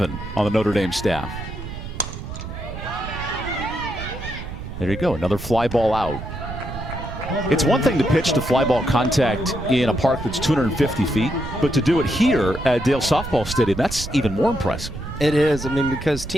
on the Notre Dame staff. There you go, another fly ball out. It's one thing to pitch to fly ball contact in a park that's 250 feet, but to do it here at Dale Softball Stadium, that's even more impressive. It is. I mean, because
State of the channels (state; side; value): noise; right; rumble, 9 dB below the sound